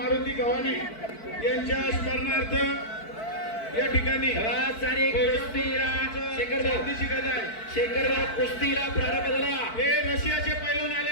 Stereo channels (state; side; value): late; right; 4.5 ms